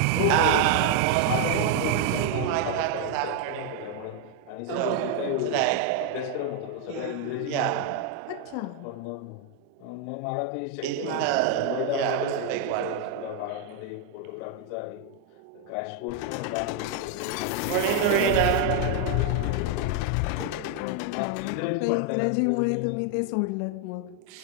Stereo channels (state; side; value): different; both; correlation 0.00